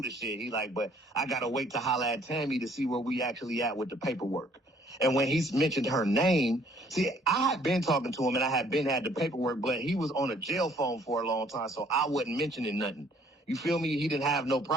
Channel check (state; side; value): normal; both; correlation 0.61